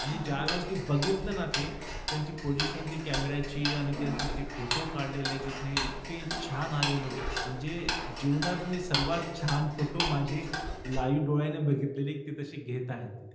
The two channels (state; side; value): identical; both; correlation 1.00